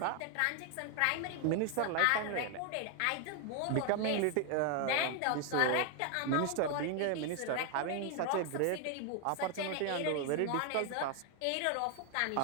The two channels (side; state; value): both; different; correlation 0.00